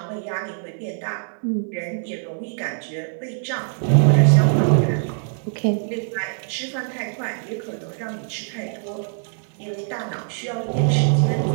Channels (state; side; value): silent; left; 63 dB below the other